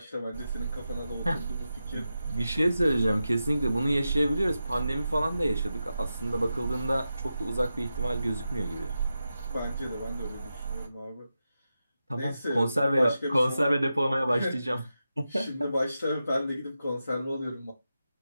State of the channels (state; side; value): inverted; both; correlation -0.90